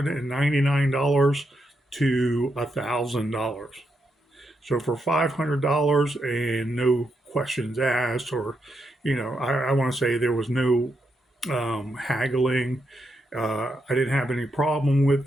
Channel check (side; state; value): both; normal; correlation 0.82